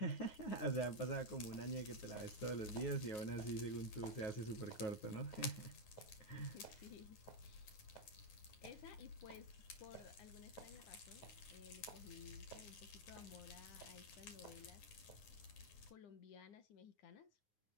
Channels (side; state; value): right; late; 9.7 ms